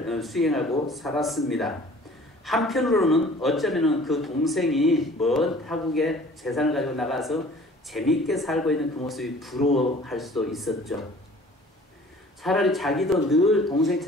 수행하고 살았습니다. 한편으로는 어쩌면 그 동생이 먼 타국에 재산을 가지고 나가서 재밌게 살고 있는 그 모습이 부러워할 수도 있었죠. 차라리 자기도 늘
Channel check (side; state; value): both; normal; correlation 0.50